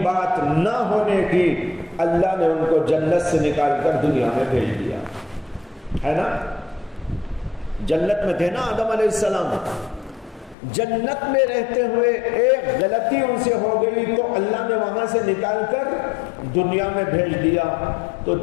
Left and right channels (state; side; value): drops out; right; at 10.6 s